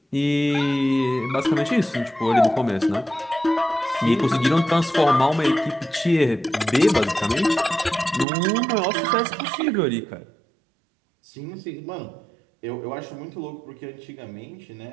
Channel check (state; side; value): drops out; left; at 8.2 s